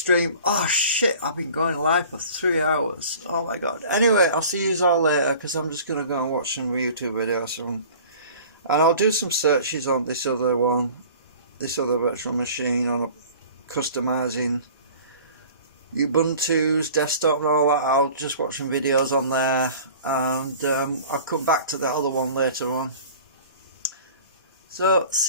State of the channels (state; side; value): inverted; both; correlation -0.45